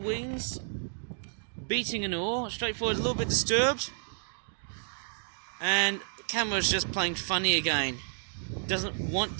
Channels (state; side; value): silent; left; digital silence